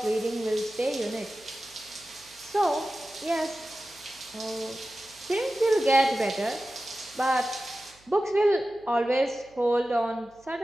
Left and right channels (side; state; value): right; noise; hum, 29 dB below the sound